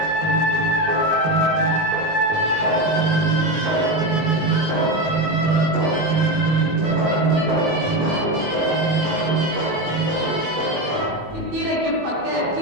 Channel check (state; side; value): late; left; 19 ms